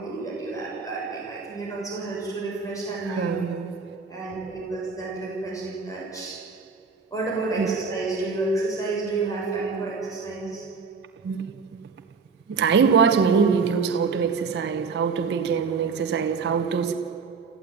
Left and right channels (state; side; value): quieter; left; 5.1 dB